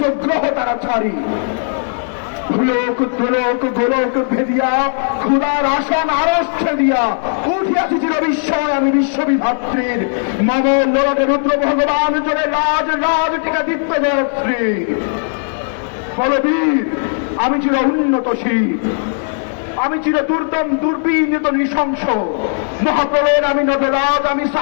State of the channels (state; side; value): silent; right; 69 dB below the other